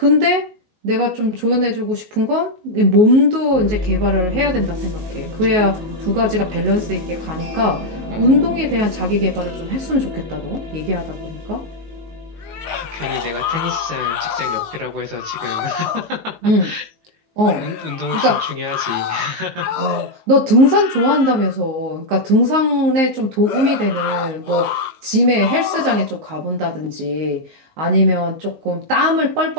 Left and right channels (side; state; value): left; late; 19 ms